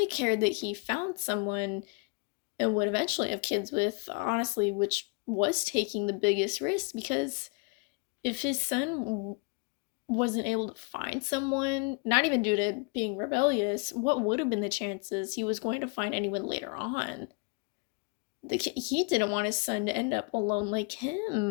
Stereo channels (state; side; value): quieter; right; 32.4 dB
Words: cared that he found someone and would eventually have kids with, honestly, which was taking the biggest risk, because if his son wasn't able to find someone, not even due to being rebellious, what would have been the chances he was going to find anyone later on? He didn't want his son to end up alone like